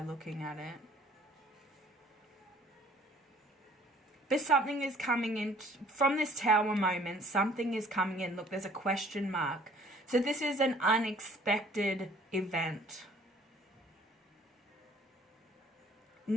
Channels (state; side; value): normal; both; correlation 0.55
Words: looking at it. But something is coming in from this Tower moment. Something is coming in. Look, there's a question mark. So this is an unexpected event.